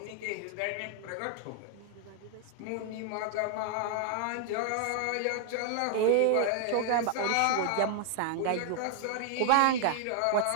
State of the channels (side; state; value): both; different; correlation 0.00